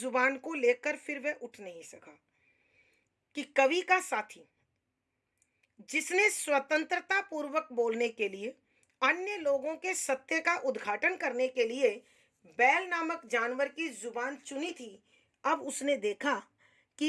को लेकर फिर वह उठ नहीं सका। कि कवि का साथी जिसने स्वतंत्रता पूर्वक बोलने के लिए, अन्य लोगों के सत्य का उद्घाटन करने के लिए बैल नामक जानवर की जुबान चुनी थी, अब उसने देखा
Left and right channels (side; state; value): both; identical; correlation 1.00